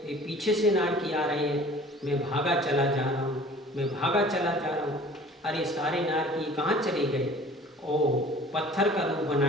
वे पीछे से नारकी आ रहे हैं। मैं भागा चला जा रहा हूँ, मैं भागा चला जा रहा हूँ। अरे सारे नारकी कहाँ चले गए? ओह, पत्थर का रूप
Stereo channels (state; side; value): normal; both; correlation 0.48